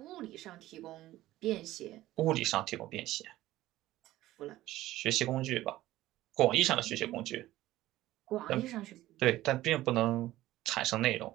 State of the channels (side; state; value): left; quieter; 15.7 dB